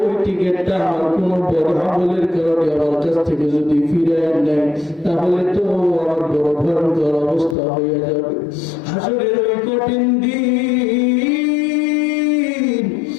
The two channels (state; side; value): drops out; right; at 7.6 s